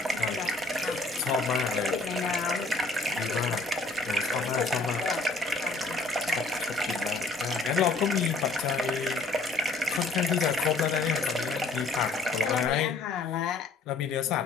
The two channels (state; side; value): quieter; right; 3.4 dB